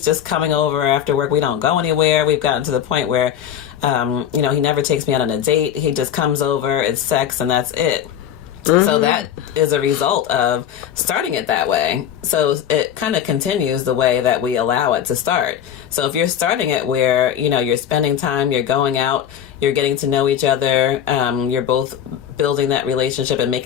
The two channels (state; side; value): quieter; right; 9.7 dB